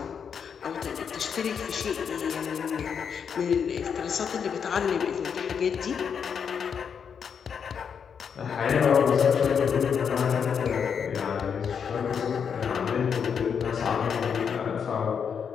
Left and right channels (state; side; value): quieter; right; 7.0 dB